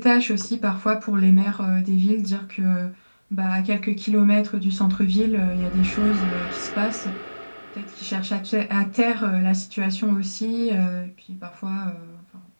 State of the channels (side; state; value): both; inverted; correlation -1.00